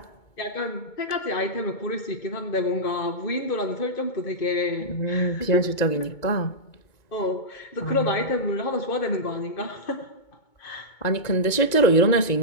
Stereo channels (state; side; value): late; right; 2.2 ms